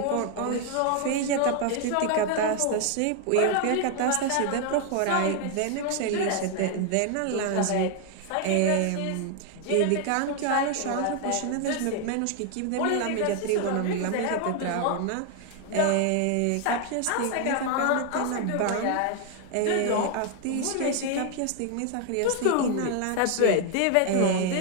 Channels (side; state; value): both; different; correlation 0.00